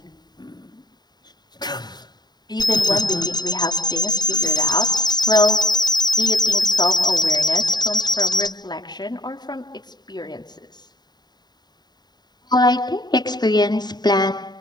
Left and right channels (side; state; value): right; late; 0.20 ms